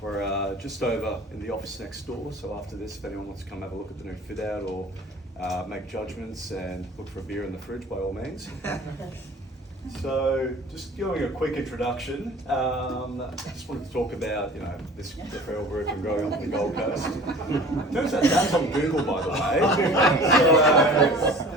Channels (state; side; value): normal; both; correlation 0.43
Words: We're just over in the office next door. So after this, if anyone wants to come have a look at the new fit out or make judgments and look for a beer in the fridge, by all means. So, just giving a quick introduction, I just wanted to talk about, this referral group and growing up on the Gold Coast. Turns out that's on Google, by the way.